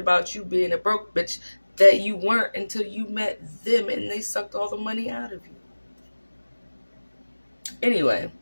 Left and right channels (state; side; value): inverted; both; correlation -1.00